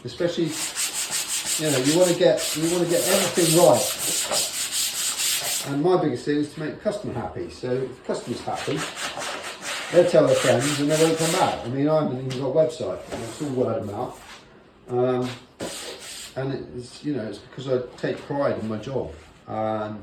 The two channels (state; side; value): identical; both; correlation 1.00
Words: especially, you know, you want to get everything right. And my biggest thing is to make the customer happy. So if the customer's happy, they'll tell their friends and they won't come back. I mean, I haven't even got a website. It's all word of mouth. And it's, you know, it's because I take pride in my job. And